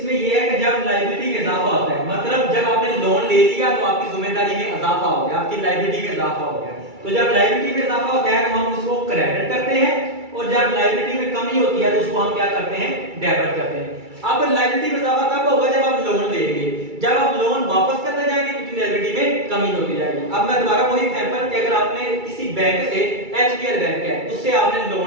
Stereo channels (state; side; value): late; left; 2.3 ms